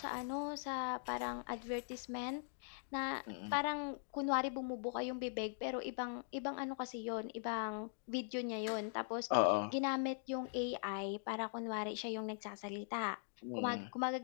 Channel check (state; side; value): silent; right; digital silence